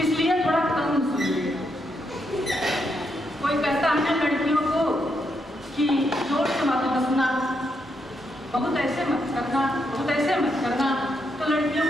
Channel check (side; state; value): both; normal; correlation 0.80